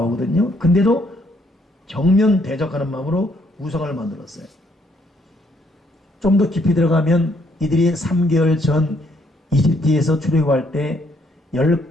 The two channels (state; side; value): normal; both; correlation 0.70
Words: 근데도 정면 대적하는 마음으로 우상을 만들었어요. 좀 더 깊이 들어가면 이들이 3개월 전 이집트에서 출애굽할 때